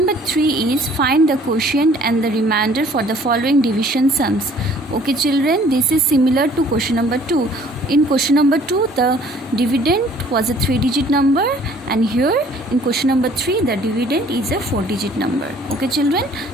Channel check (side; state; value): both; normal; correlation 0.56